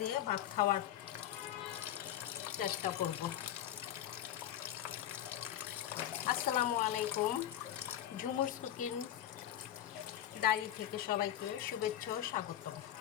ভাত খাওয়ার চেষ্টা করব। আসসালামু আলাইকুম। ঝুমুরস কুকিং ডায়েরি থেকে সবাইকে শুভেচ্ছা ও স্বাগতম।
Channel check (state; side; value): quieter; right; 11.5 dB